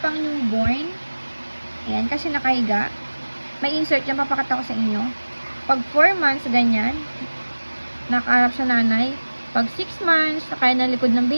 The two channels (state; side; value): inverted; both; correlation -1.00